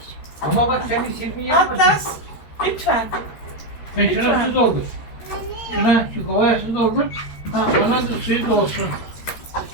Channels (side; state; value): right; late; 13 ms